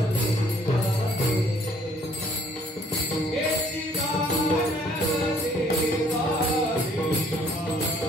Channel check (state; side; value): normal; both; correlation 0.61